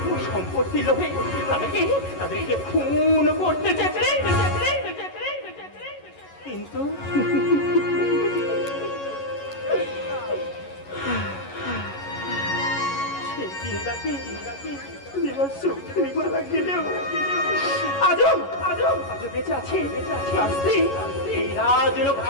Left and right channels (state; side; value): late; right; 11 ms